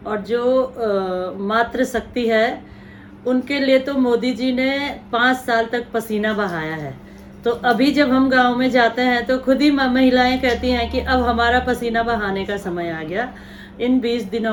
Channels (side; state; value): both; identical; correlation 1.00